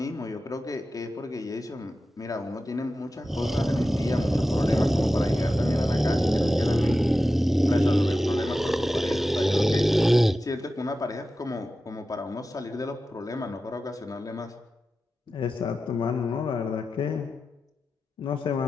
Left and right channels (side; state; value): both; normal; correlation 0.93